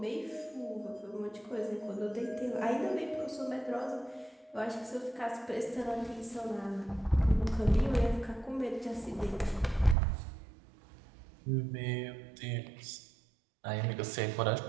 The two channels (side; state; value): left; drops out; at 10.0 s